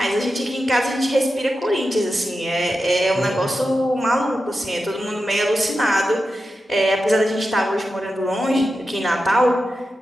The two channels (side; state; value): both; normal; correlation 0.90